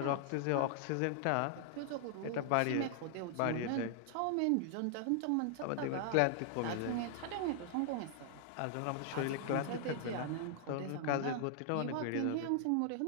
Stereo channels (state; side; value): different; both; correlation 0.00